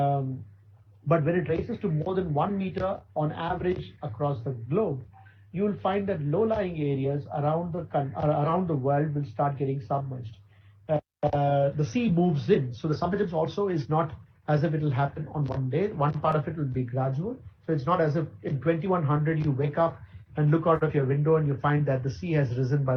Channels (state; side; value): identical; both; correlation 1.00